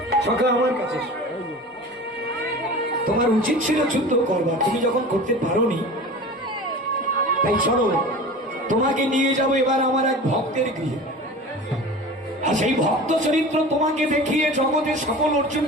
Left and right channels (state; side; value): normal; both; correlation 0.36